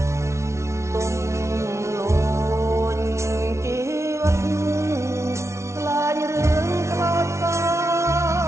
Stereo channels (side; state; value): left; late; 0.13 ms